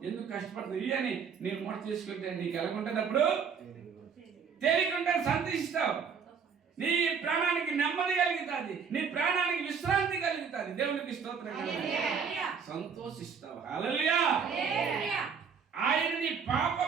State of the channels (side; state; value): left; quieter; 6.3 dB